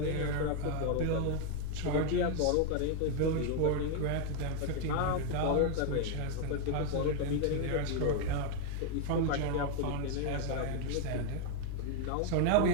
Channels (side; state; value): both; different; correlation 0.00